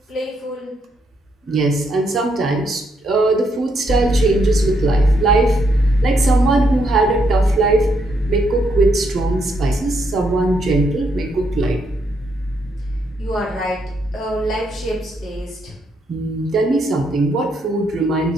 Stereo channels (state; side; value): normal; both; correlation 0.76